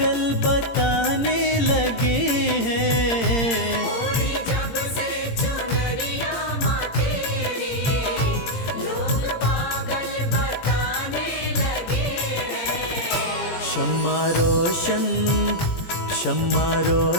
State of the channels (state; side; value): late; right; 17 ms